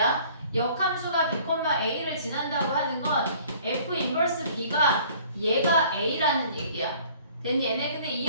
역함수가 b, a를 지난다고 하는 건 f 인버스 b가 얘가 a라는 얘기야. 됐니? 얘네 근데 이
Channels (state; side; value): inverted; both; correlation -0.53